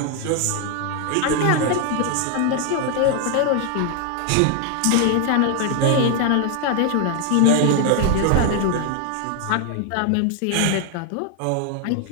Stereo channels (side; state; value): both; different; correlation 0.00